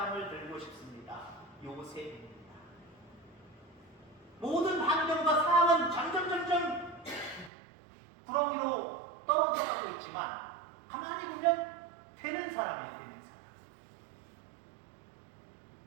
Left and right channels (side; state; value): left; drops out; at 7.5 s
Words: 들고 싶습니다. 요셉입니다. 모든 환경과 상황은 점점 구렁이로 떨어져가고 있지만 가만히 보면 되는 사람이에요.